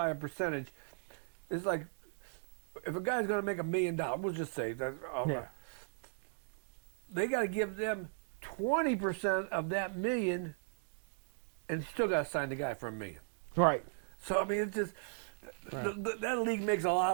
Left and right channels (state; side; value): silent; left; digital silence